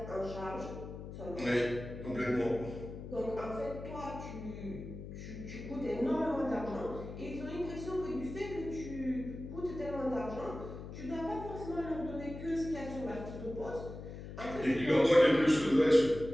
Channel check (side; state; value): left; noise; hum, 10 dB below the sound